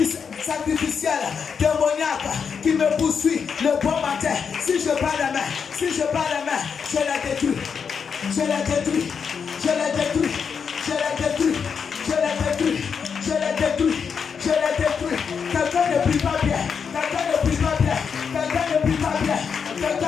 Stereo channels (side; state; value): right; quieter; 6.4 dB